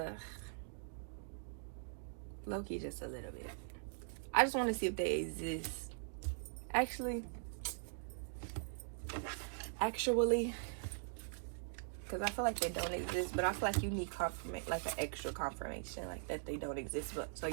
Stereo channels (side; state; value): left; silent; digital silence